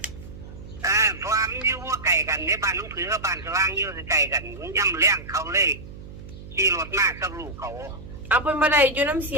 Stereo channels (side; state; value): right; noise; hum, 14 dB below the sound